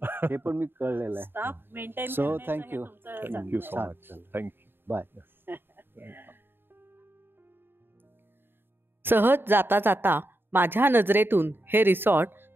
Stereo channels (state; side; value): late; left; 0.10 ms